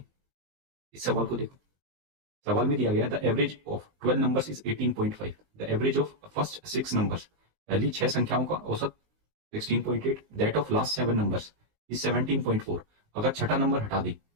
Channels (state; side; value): late; left; 20 ms